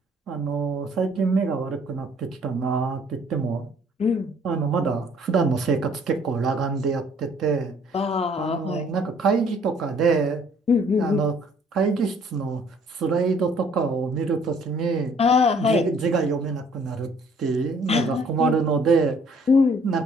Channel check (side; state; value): both; normal; correlation 0.60